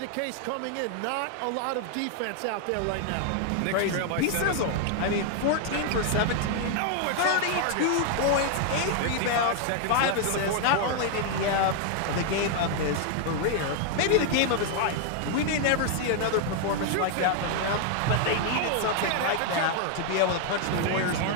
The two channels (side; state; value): both; different; correlation 0.00